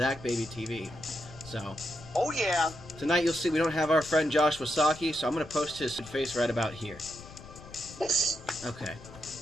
So, oh yeah. Tonight you'll see we don't have our friend Josh Wasaki, so I'm going to post his face right about here. Okay.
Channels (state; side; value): noise; left; rumble, 17 dB below the sound